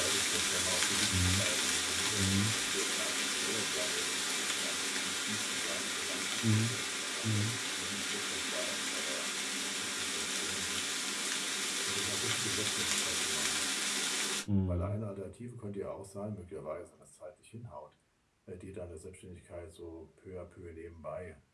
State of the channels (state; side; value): identical; both; correlation 1.00